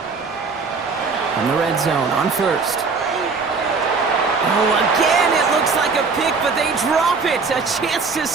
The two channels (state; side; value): quieter; left; 4.6 dB